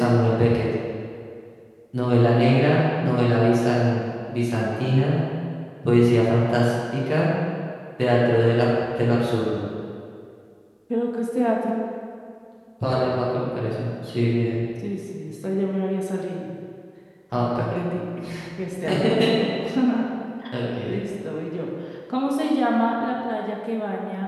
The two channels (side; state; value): both; identical; correlation 1.00